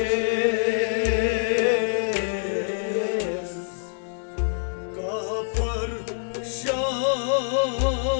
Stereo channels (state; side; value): silent; right; digital silence